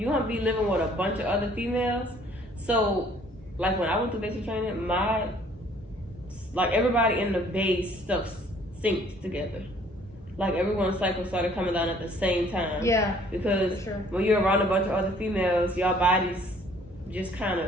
gonna be living with a bunch of other females. So like when I went through basic training, everybody in the base stuff synced together. Like everyone's cycle started coming down at the same time. Yeah. Because when you're around a bunch of other females, your bodies just kind of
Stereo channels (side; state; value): both; normal; correlation 0.58